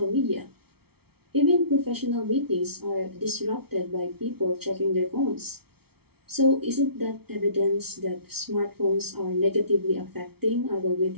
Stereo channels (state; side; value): late; left; 0.96 ms